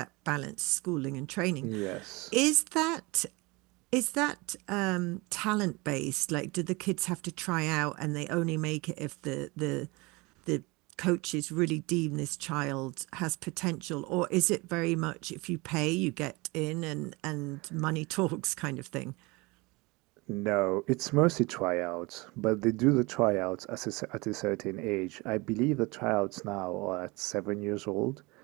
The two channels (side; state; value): left; quieter; 24.9 dB